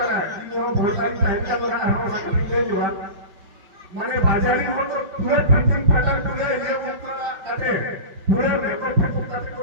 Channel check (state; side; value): late; left; 5.5 ms